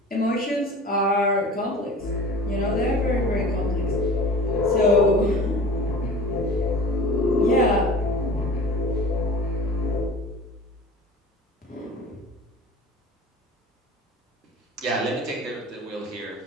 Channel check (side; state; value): both; normal; correlation 0.40